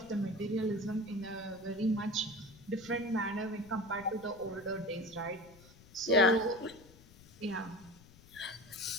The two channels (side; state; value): left; noise; rumble, 23 dB below the sound